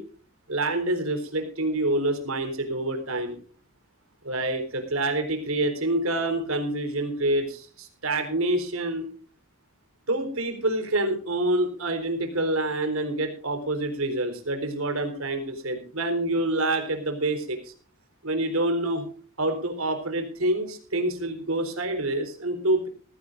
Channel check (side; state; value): both; normal; correlation -0.16